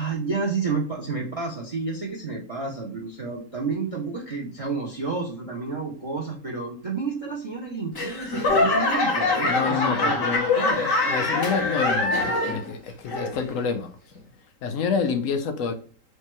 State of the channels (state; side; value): late; right; 3.8 ms